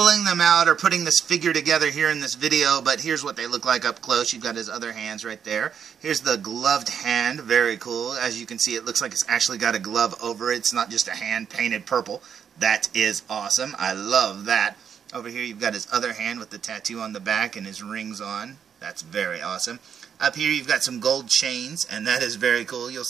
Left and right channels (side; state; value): left; quieter; 7.7 dB